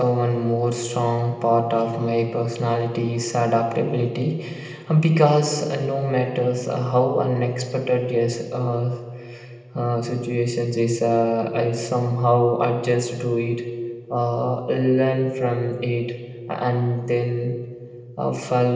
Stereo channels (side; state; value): both; identical; correlation 1.00